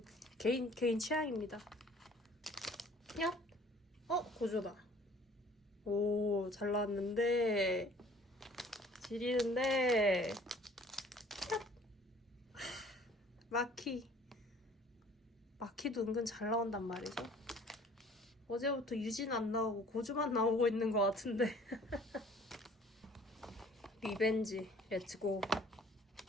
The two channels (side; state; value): both; normal; correlation 0.53